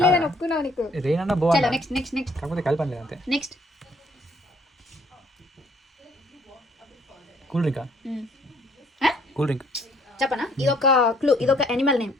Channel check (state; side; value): normal; both; correlation 0.63